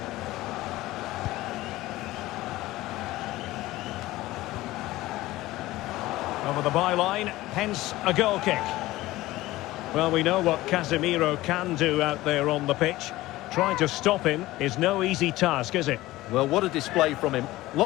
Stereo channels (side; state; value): right; quieter; 17.5 dB